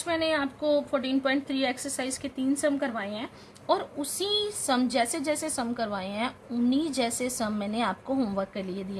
मैंने आपको 14.3 एक्सरसाइज के 3 सम करवाए हैं, और उसी सम जैसे जैसे सम करवाए हैं उन्हीं जैसे सम मैंने आपको होमवर्क के लिए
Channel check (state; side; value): identical; both; correlation 1.00